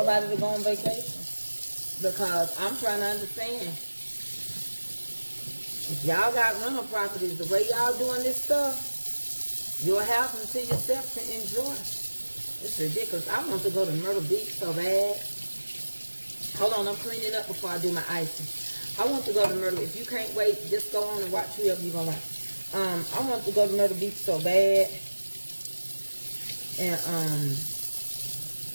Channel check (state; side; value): inverted; both; correlation -1.00